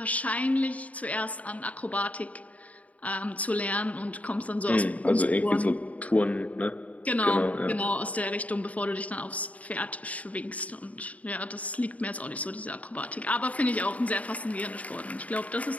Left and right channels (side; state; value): right; late; 0.069 ms